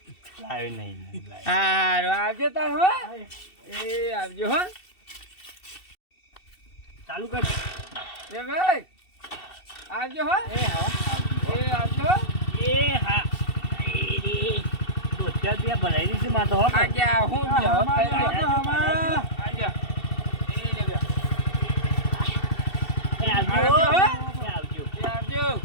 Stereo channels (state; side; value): late; right; 2.7 ms